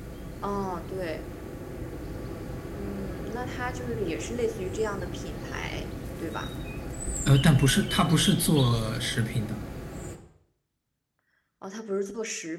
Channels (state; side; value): identical; both; correlation 1.00